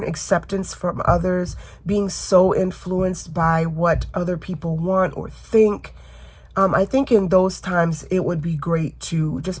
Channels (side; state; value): both; identical; correlation 1.00